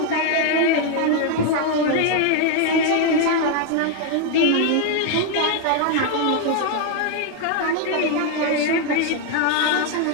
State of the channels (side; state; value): both; different; correlation 0.01